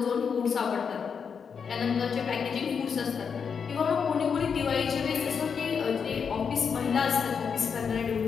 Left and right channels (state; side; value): quieter; right; 6.4 dB